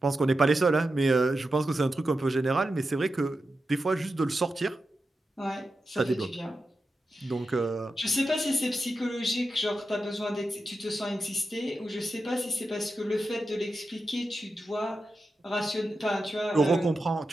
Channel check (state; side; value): normal; both; correlation 0.90